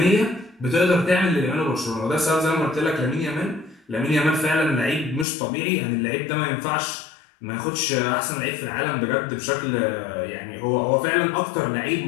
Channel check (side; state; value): right; drops out; at 5.2 s